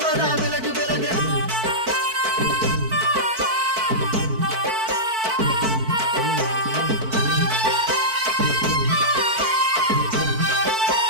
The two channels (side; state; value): left; late; 4.5 ms